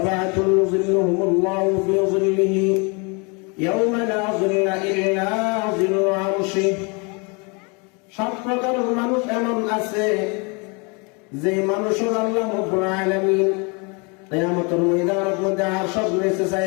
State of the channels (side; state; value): right; quieter; 31.6 dB